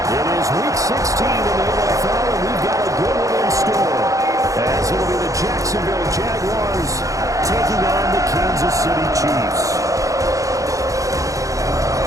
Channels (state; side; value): late; left; 0.16 ms